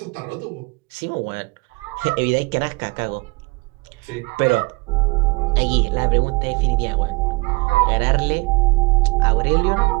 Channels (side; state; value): left; quieter; 25.5 dB